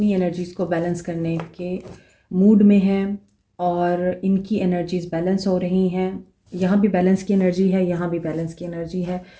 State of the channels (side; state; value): both; identical; correlation 1.00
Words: एनर्जीज़ को बैलेंस करने के मूड में हैं और इनकी एनर्जीज़ बैलेंस हो रही हैं। यहाँ भी बैलेंस की एनर्जी है, यहाँ भी बैलेंस की एनर्जी है।